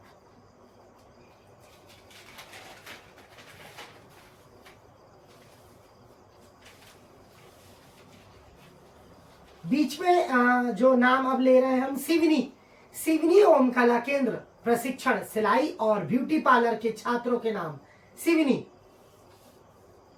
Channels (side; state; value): both; identical; correlation 1.00